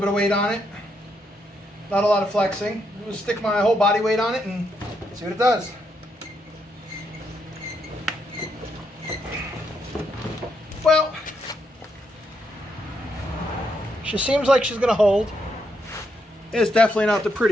of weight on it, not a lot of flexing. I'm going to stick my whole body weight on it and see what it does. Well, she seems like she's going to hold. It's definitely not the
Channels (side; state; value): both; normal; correlation 0.78